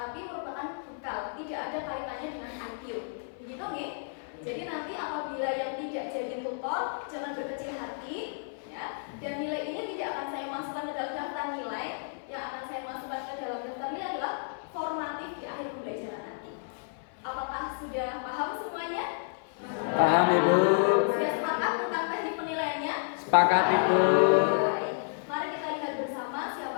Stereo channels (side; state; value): right; silent; 57 dB below the other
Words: merupakan bekal, tidak ada kaitannya dengan IQ. Begitu nih. Jadi nanti apabila yang tidak jadi tutor jangan berkecil hati ya. Dan nilai ini tidak akan saya masukkan ke dalam daftar nilai. Yang akan saya masukkan ke dalam daftar nilai adalah formatif di akhir pembelajaran nanti. Apakah sudah paham semuanya? Paham Ibu. Sudah sepakat tentang teknik penilaiannya? Sepakat Ibu. Baik. Mari kita lihat bersama